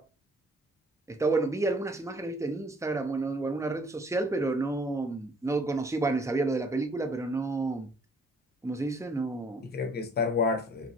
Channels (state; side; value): normal; both; correlation 0.59